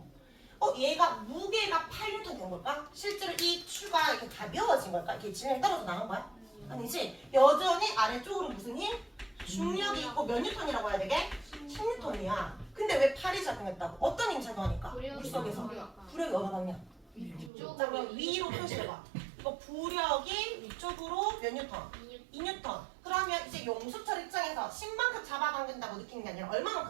얘가 무게가 8N 된 걸까? 실제로 이 추가 이렇게 가벼워진 걸까? 이렇게 진행이 떨어져 나간 거야? 아니지. 여전히 아래쪽으로 무슨 힘? 중력이 있고 몇 뉴턴이라고 해야 되게? 16톤이야. 근데 왜 8이 작용했다고? 어떤 힘 작용하니까? 물속에서. 부력이 어느 방향? 자, 그럼 위로 표시해봐. 이거 부력이 위쪽으로 몇 뉴턴? 2뉴턴. 그러면 이제 용수철 입장에서 10만큼 잡아당긴다고 느끼는 게 아니라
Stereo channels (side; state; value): left; drops out; at 17.5 s